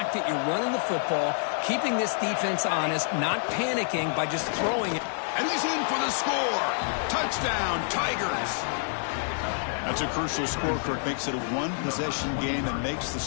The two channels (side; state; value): right; silent; digital silence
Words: that you're running the football, keeping this defense honest, not panicking by just throwing it. And he's in for the score. Touchdown, Tigers. That's a crucial score, Kirk. Makes it a 1-possession game and makes the